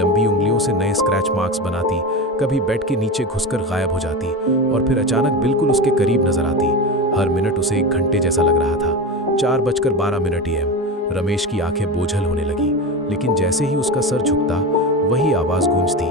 उंगलियों से नए स्क्रैच मार्क्स बनाती, कभी बेड के नीचे घुसकर गायब हो जाती और फिर अचानक बिल्कुल उसके करीब नजर आती। हर मिनट उसे 1 घंटे जैसा लग रहा था। 4:12 AM। रमेश की आंखें बोझल होने लगी, लेकिन जैसे ही उसका सर झुकता वही आवाज गूंजती,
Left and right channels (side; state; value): both; normal; correlation 0.23